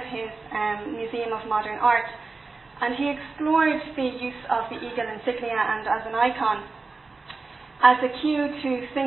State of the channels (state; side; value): quieter; left; 3.9 dB